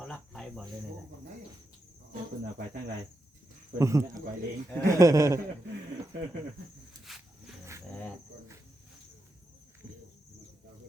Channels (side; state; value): both; normal; correlation 0.85